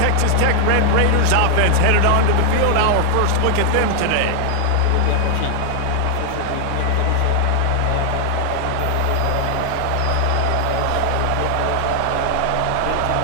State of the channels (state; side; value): different; both; correlation 0.00